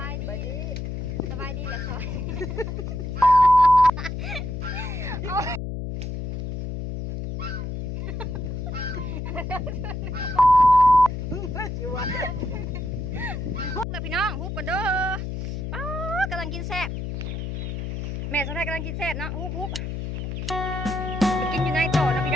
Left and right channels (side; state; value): left; noise; hum, 4 dB below the sound